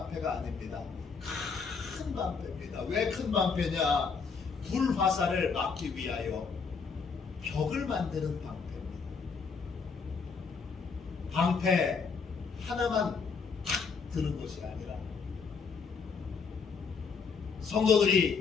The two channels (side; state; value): right; quieter; 5.4 dB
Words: 아닙니다. 큰 방패입니다. 왜 큰 방패냐? 불화살을 막기 위하여 벽을 만드는 방패입니다. 방패 하나만 탁 드는 것이 아니라